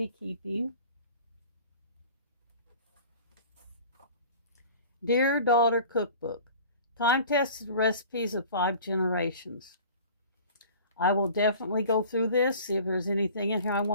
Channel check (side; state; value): both; inverted; correlation -0.44